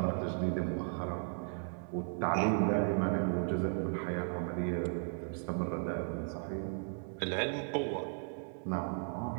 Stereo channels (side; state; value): left; silent; 54 dB below the other